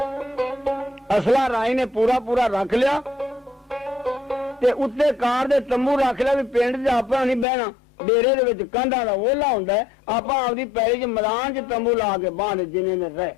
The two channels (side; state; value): right; drops out; at 7.5 s